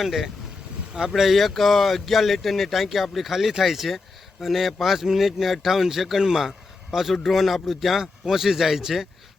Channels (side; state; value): right; quieter; 3.9 dB